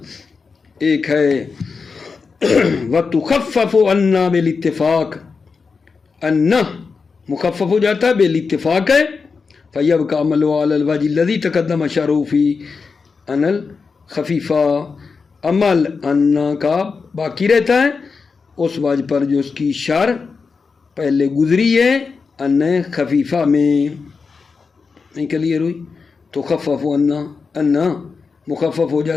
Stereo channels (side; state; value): right; quieter; 4.9 dB